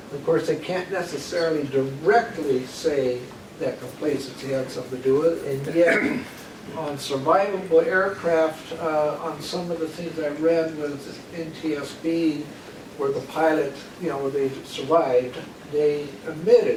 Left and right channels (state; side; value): identical; both; correlation 1.00